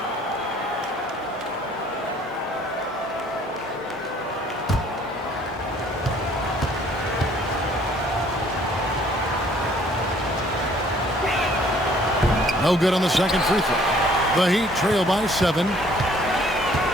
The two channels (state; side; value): normal; both; correlation 0.59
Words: No good on the second free throw. The Heat trail by 7.